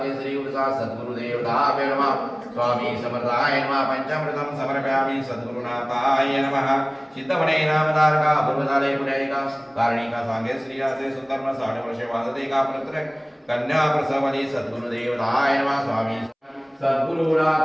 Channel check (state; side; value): identical; both; correlation 1.00